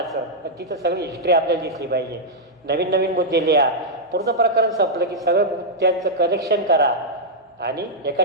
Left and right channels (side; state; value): both; normal; correlation -0.07